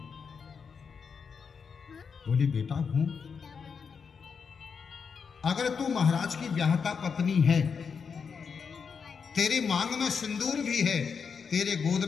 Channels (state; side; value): quieter; right; 6.0 dB